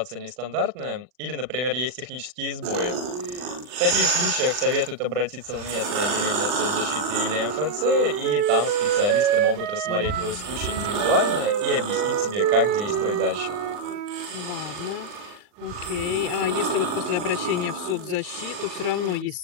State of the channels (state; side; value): late; left; 40 ms